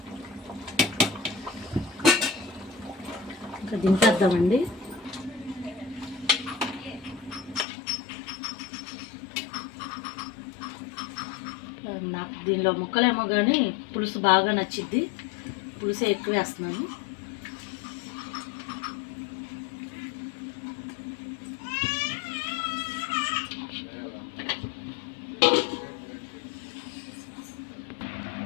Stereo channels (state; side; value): drops out; right; at 7.7 s